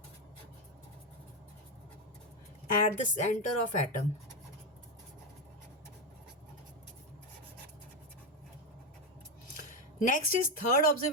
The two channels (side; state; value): both; normal; correlation 0.09